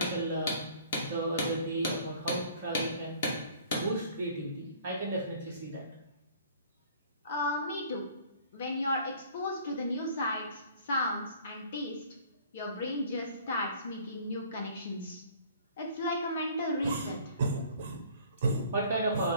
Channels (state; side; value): inverted; both; correlation -0.52